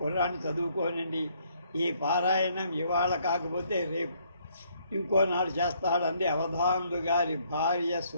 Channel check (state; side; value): inverted; both; correlation -0.68